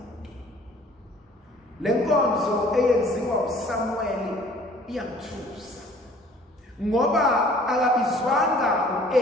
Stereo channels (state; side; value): normal; both; correlation 0.53